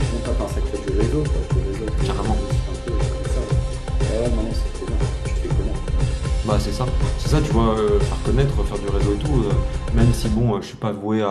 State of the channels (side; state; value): both; identical; correlation 1.00